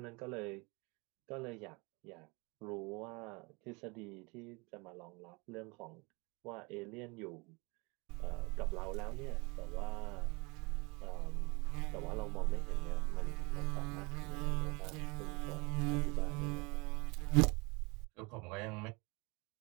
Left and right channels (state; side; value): quieter; left; 27.9 dB